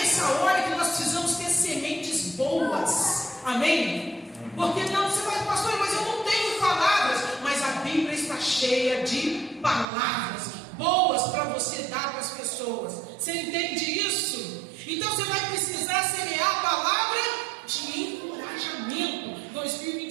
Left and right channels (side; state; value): left; drops out; at 9.9 s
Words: hora que nós precisamos ter sementes boas, amém? Porque não, você vai, pastor, mas eu não tenho palavras. Mas a Bíblia está cheia de palavras boas para você dar para as pessoas. Você entende isso? Então você vai precisar semear a palavra de encorajamento